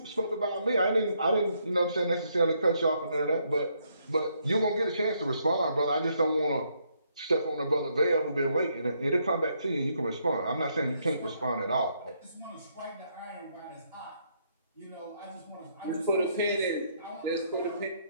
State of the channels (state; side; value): inverted; both; correlation -0.73